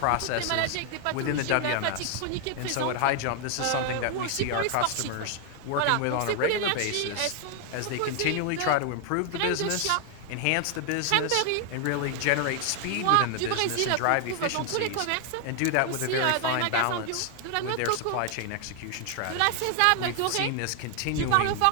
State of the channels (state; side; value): different; both; correlation 0.00